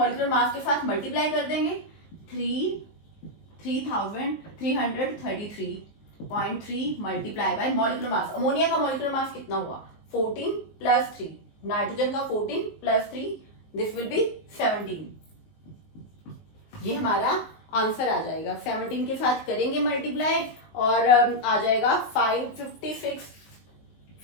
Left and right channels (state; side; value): late; right; 19 ms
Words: मास के साथ मल्टीप्लाई कर देंगे, 3333.3 multiply by molecular mass. Ammonia का मॉलिक्यूलर मास कितना हुआ, 14 प्लस 3, नाइट्रोजन का 14 प्लस 3, दिस विल बी 17। ये हमारा आंसर आ जाएगा, 17 के साथ करेंगे मल्टीप्लाई और आ जाएगा